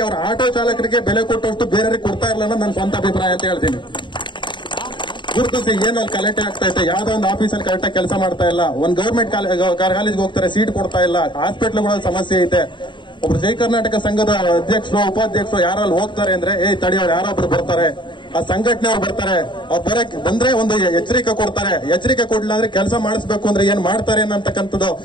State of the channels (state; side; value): late; right; 0.23 ms